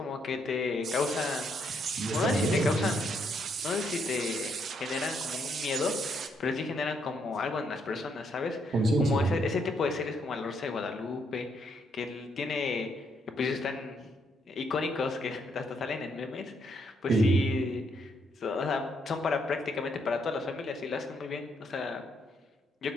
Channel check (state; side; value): normal; both; correlation 0.74